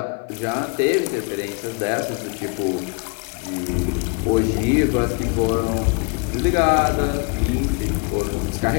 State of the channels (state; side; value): quieter; right; 34.4 dB